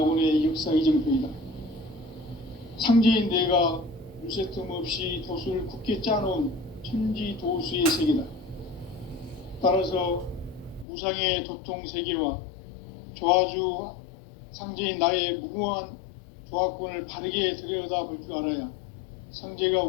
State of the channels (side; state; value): right; drops out; at 10.9 s